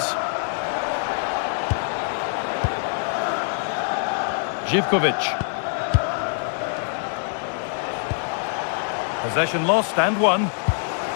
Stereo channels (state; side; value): silent; right; digital silence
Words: Živković. Possession lost and won.